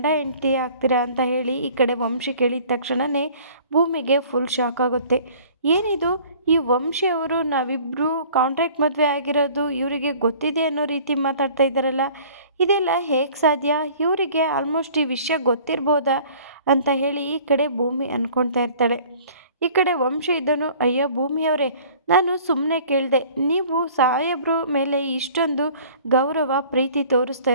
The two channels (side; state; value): both; inverted; correlation -0.50